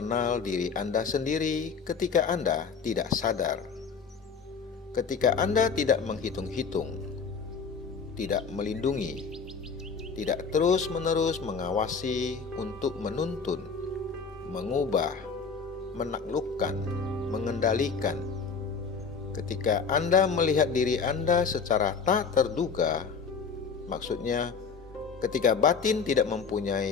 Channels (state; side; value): quieter; right; 5.6 dB